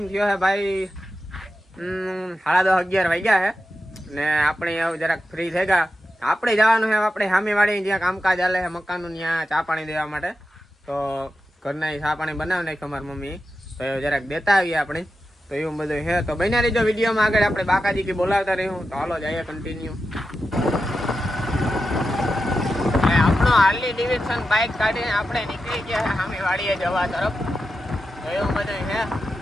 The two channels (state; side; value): normal; both; correlation 0.90